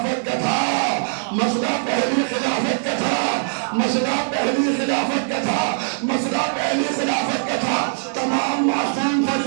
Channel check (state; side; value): silent; left; 65 dB below the other